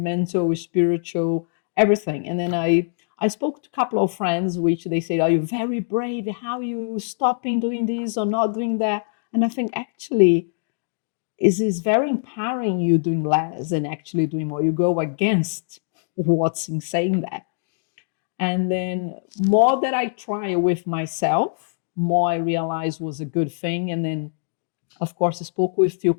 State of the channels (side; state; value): right; silent; digital silence